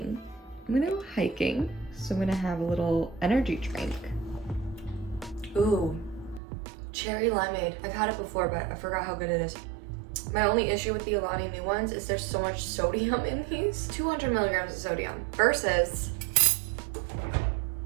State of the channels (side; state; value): left; drops out; at 6.4 s